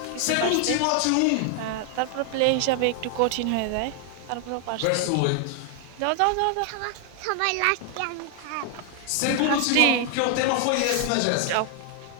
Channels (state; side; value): different; both; correlation 0.00